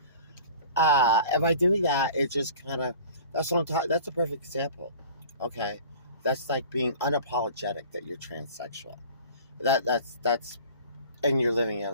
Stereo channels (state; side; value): inverted; both; correlation -0.44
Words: And by doing that, it just kind of, that's what I'm talking, that's a perfect example. Okay. That's like being unapologetic that you're transsexual. That's, and you're living your